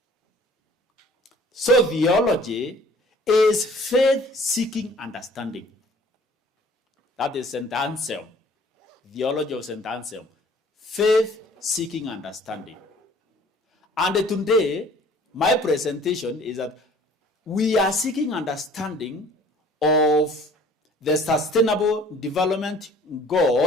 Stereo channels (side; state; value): both; normal; correlation 0.52